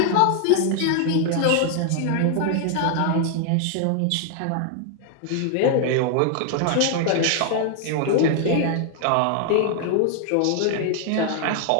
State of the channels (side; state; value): both; different; correlation 0.00